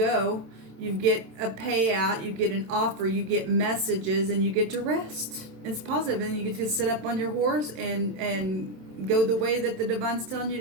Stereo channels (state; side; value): late; left; 27 ms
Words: You get a payout, you get an offer, you get messages, and you get to rest. It's positive, and you get to sit up on your horse and go the way that the divine's telling you